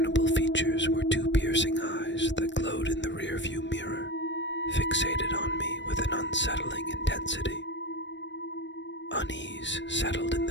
features were two piercing eyes that glowed in the rearview mirror, fixated on me with an unsettling intensity. Unease settled in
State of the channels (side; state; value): right; late; 0.53 ms